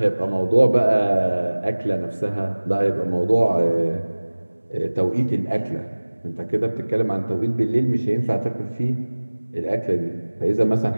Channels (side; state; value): both; inverted; correlation -1.00